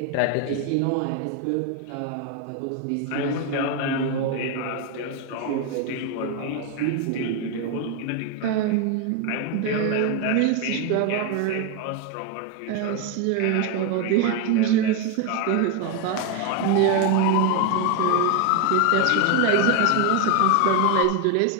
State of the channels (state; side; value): different; both; correlation 0.01